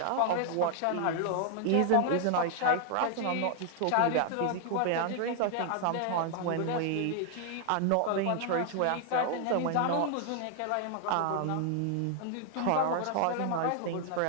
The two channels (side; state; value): both; different; correlation 0.00